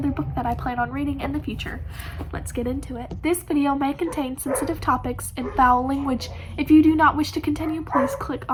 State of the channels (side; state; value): both; identical; correlation 1.00